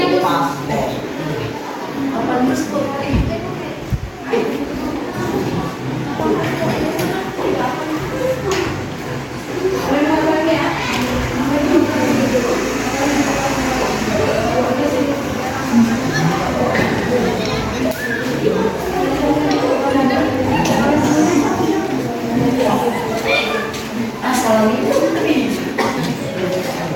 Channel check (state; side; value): identical; both; correlation 1.00